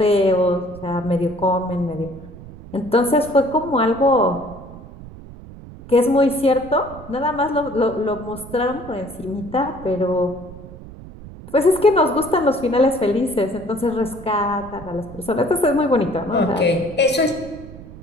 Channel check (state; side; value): noise; right; rumble, 16 dB below the sound